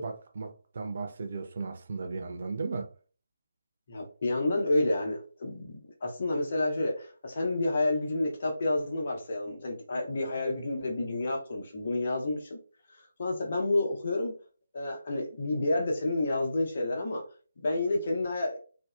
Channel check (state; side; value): inverted; both; correlation -0.89